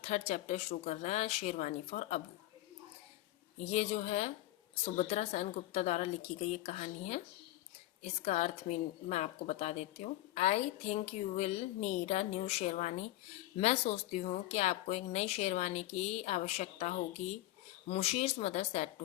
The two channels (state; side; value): quieter; right; 16.4 dB